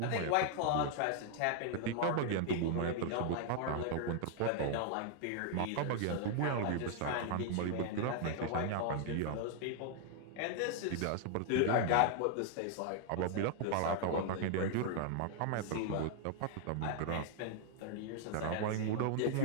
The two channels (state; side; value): different; both; correlation 0.00